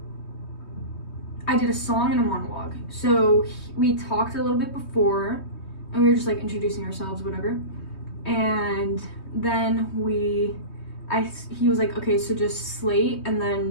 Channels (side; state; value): right; late; 3.2 ms